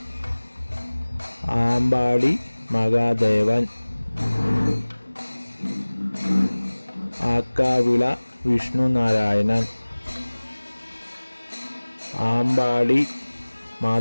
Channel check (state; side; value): inverted; both; correlation -1.00